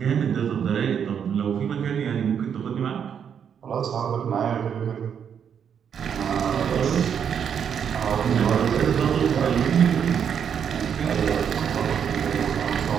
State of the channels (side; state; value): left; quieter; 7.9 dB